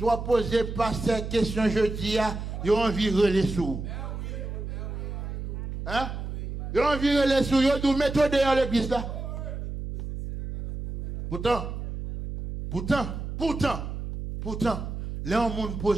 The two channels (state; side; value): noise; right; hum, 6 dB below the sound